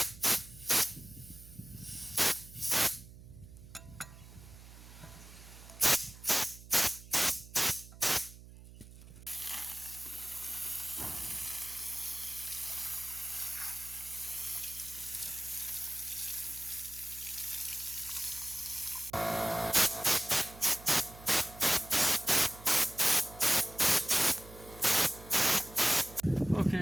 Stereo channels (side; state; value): right; noise; hum, 18 dB below the sound